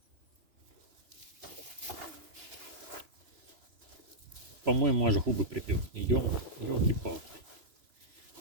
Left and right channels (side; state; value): left; late; 3.0 ms